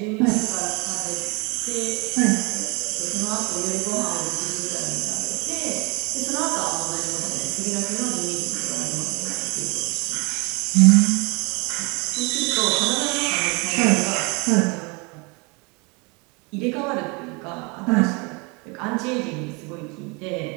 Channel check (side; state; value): left; quieter; 29.6 dB